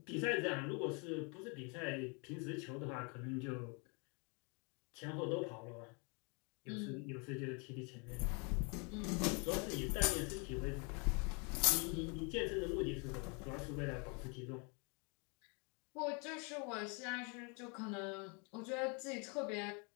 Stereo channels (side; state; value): right; quieter; 34.0 dB